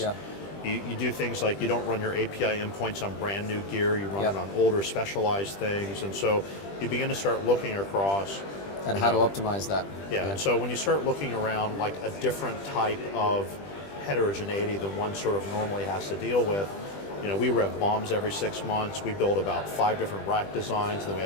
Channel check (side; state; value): right; late; 20 ms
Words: You do things like you don't run your API endpoints on brand new gear, you run it on older specialized things, and so you begin to start looking across and how to optimize that. Yeah, and so when you start looking around like a different type of heterogeneity than one sort of normally has to deal with, we rev bombs every 6 months, we build about 5 different rack designs, and then we